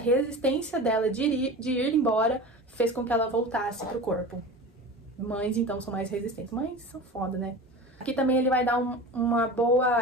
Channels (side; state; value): both; normal; correlation 0.33